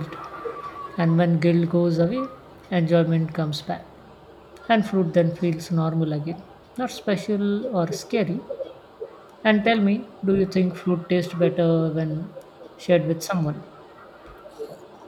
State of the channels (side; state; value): both; identical; correlation 1.00